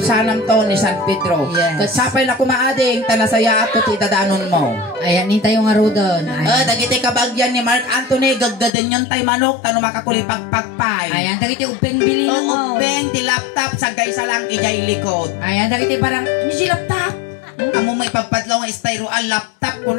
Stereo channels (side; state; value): right; drops out; at 8.7 s